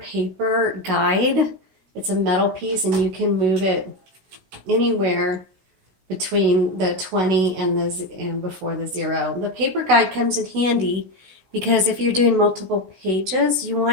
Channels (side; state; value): left; late; 16 ms